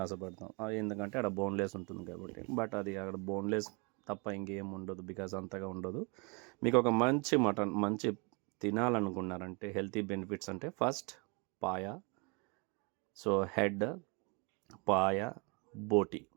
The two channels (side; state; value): left; quieter; 30.3 dB